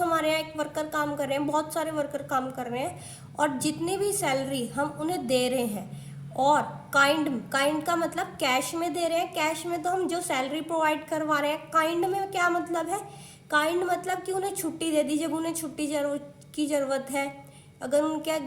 हमारे यहाँ एक वर्कर काम कर रहे हैं, बहुत सारे वर्कर काम कर रहे हैं, और जितनी भी सैलरी हम उन्हें दे रहे हैं, और काइंड का मतलब कैश में दे रहे हैं। कैश में तो हम जो सैलरी प्रोवाइड करवा रहे हैं। काइंड में क्या मतलब है? काइंड मतलब कि उन्हें छुट्टी दे दी जब उन्हें छुट्टी की ज़रूरत है। अगर उनके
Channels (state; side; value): identical; both; correlation 1.00